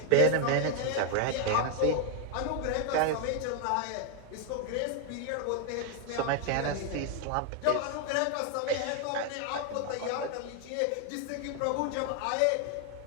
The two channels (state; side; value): different; both; correlation 0.00